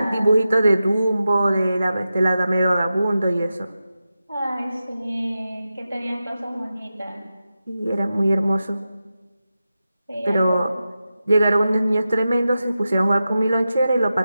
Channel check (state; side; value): inverted; both; correlation -0.92